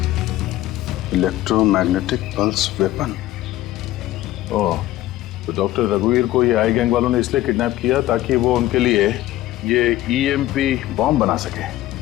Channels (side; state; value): right; quieter; 15.2 dB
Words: इलेक्ट्रोमैग्नेटिक पल्स वेपन। ओह, तो डॉक्टर रघुवीर को ये आई गैंग वालों ने इसलिए किडनैप किया ताकि वो उनके लिए ये ईएमपी बॉम्ब बना सके।